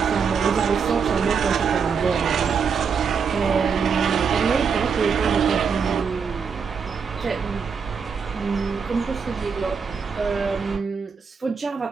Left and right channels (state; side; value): quieter; left; 6.0 dB